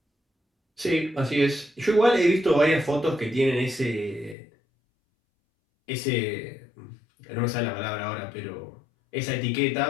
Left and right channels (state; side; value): drops out; right; at 4.4 s